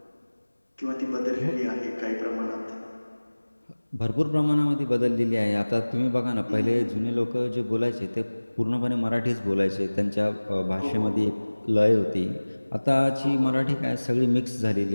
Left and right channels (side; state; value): both; inverted; correlation -1.00